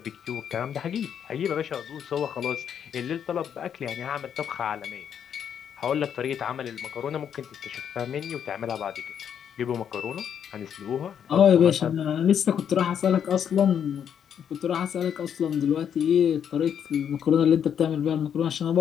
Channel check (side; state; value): right; quieter; 8.5 dB